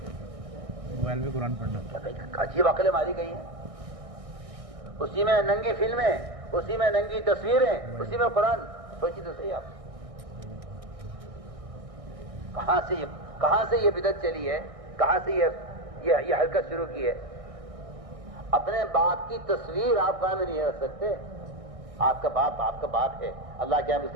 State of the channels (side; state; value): left; late; 1.6 ms